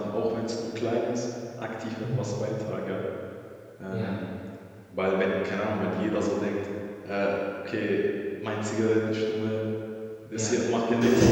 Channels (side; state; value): both; identical; correlation 1.00